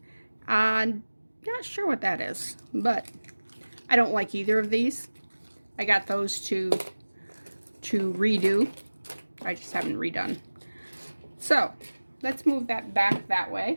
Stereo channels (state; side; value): inverted; both; correlation -1.00